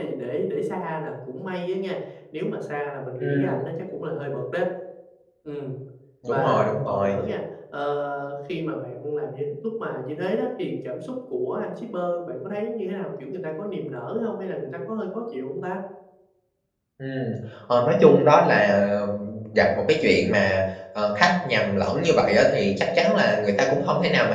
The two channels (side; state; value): both; identical; correlation 1.00